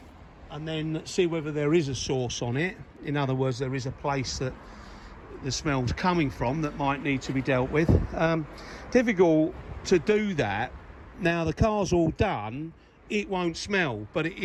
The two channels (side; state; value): both; identical; correlation 1.00